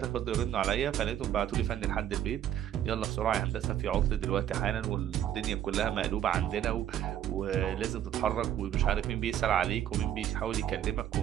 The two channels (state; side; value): quieter; left; 10.9 dB